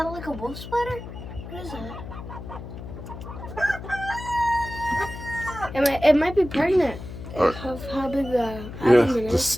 like a wolf spider? What is that? It might be pregnant. Right. How big the abdomen is.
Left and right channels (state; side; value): noise; left; hum, 11 dB below the sound